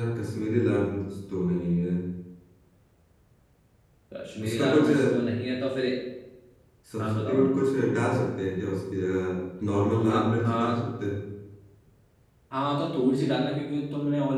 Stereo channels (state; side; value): identical; both; correlation 1.00